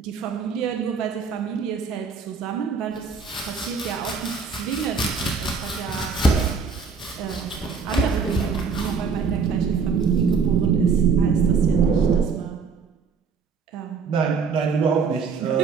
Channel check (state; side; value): quieter; left; 5.3 dB